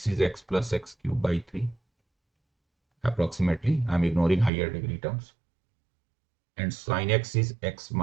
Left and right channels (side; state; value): left; drops out; at 4.5 s